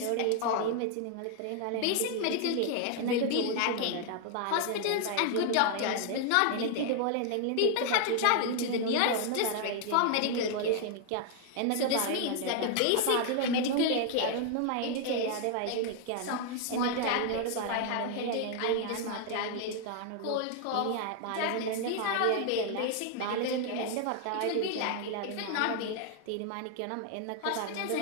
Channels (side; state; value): both; different; correlation 0.00